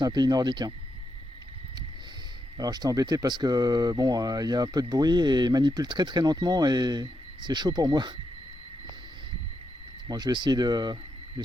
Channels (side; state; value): both; normal; correlation 0.83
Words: un pays nordique. Hein. Alors j'étais embêté parce que bon, il y a un peu de bruit et il manipule très très lentement et c'est chaud pour moi. Bon, je vais essayer de